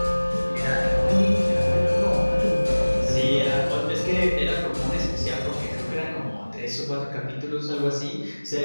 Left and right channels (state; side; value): inverted; both; correlation -1.00